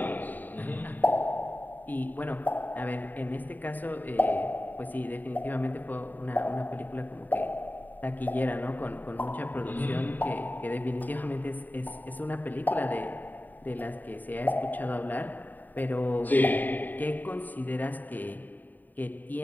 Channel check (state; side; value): late; right; 0.087 ms